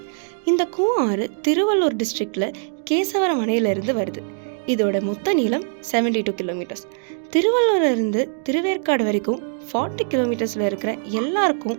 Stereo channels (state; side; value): silent; left; digital silence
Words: இந்த கூவம் ஆறு திருவள்ளூர் டிஸ்ட்ரிக்டில் கேசவரம் அணையிலிருந்து வருது. இதோட மொத்த நீளம் 72 கிலோமீட்டர்ஸ். திருவள்ளூர்லேருந்து திருவேற்காடு வரைக்கும் 40 கிலோமீட்டர்ஸில் இருக்கிற